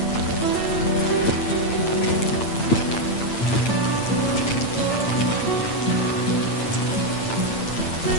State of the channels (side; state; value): right; late; 8.9 ms